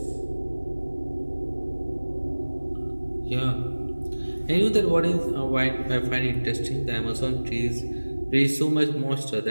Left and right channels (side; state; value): both; inverted; correlation -1.00